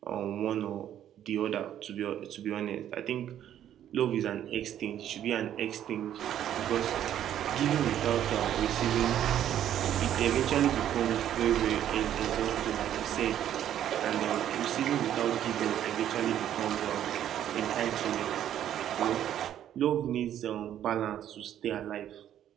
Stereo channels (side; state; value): left; quieter; 10.9 dB